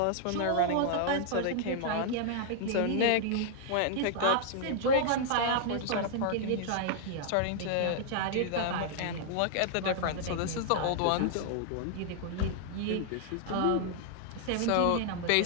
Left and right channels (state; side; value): different; both; correlation -0.01